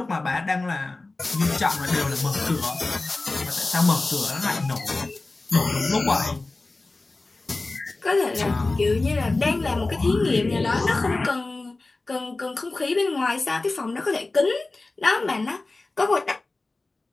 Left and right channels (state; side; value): quieter; right; 3.3 dB